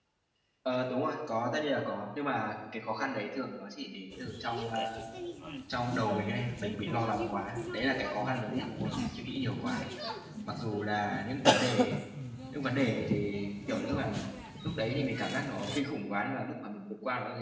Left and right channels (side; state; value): both; identical; correlation 1.00